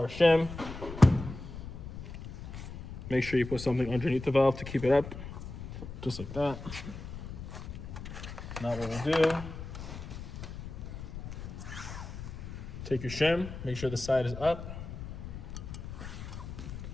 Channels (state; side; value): noise; left; rumble, 10 dB below the sound